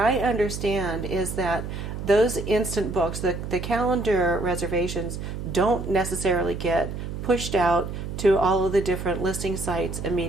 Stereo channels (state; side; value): noise; right; hum, 7 dB below the sound